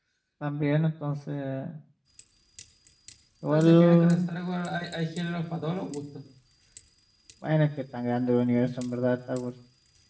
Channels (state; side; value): identical; both; correlation 1.00